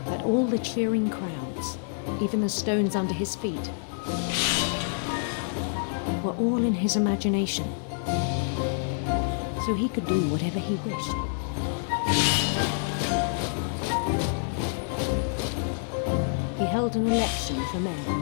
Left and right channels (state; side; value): silent; right; 58 dB below the other